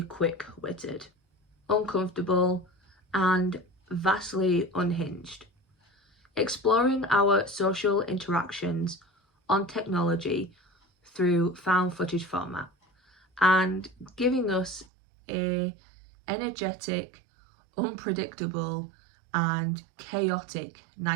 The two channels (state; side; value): drops out; left; at 14.9 s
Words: quick-witted, uncomfortable, and vastly unhinged, exploring our social interactions on technology through found footage format and giving us a energetic, unpredictable, and chaotic